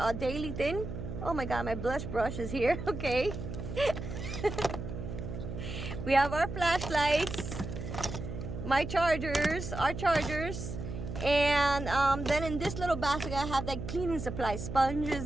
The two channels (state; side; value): noise; right; hum, 7 dB below the sound